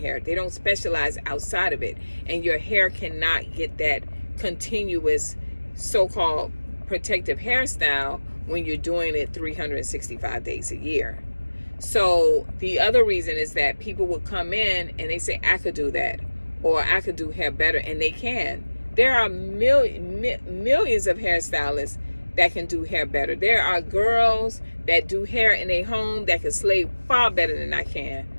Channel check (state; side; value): inverted; both; correlation -1.00